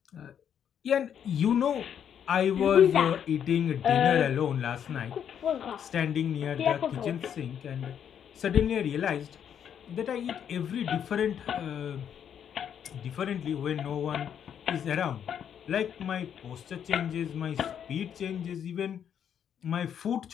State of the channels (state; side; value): quieter; right; 8.7 dB